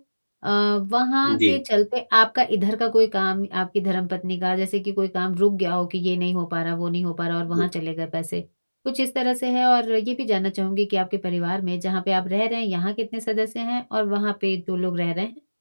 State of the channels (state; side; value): inverted; both; correlation -1.00